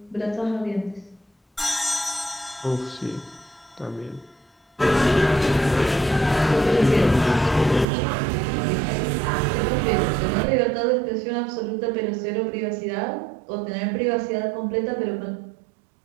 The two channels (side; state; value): left; drops out; at 7.9 s